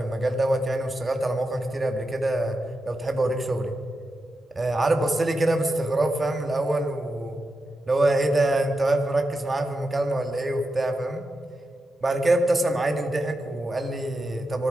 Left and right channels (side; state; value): both; normal; correlation 0.88